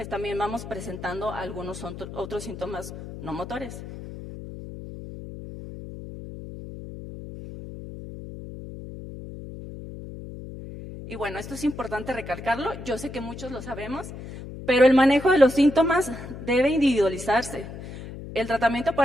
también vamos presentando algunos otros síntomas no motores. Y bueno, esto es importante recalcarlo, yo sé que muchos lo sabemos, pero el manejo de los síntomas debe individualizarse. El tratamiento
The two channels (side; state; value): left; noise; hum, 11 dB below the sound